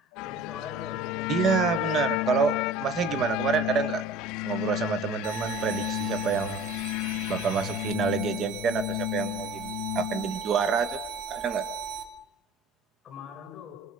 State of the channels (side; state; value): both; normal; correlation 0.43